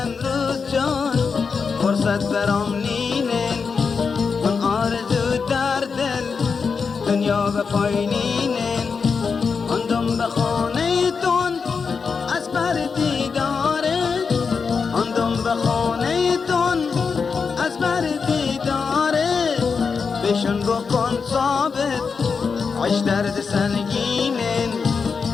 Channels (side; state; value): right; quieter; 5.4 dB